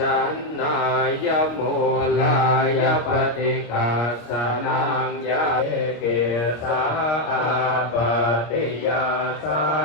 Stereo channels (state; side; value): late; right; 25 ms